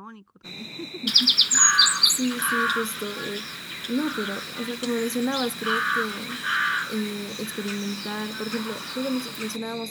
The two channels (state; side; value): identical; both; correlation 1.00